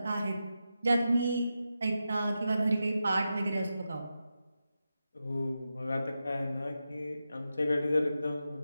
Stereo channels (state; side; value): inverted; both; correlation -0.90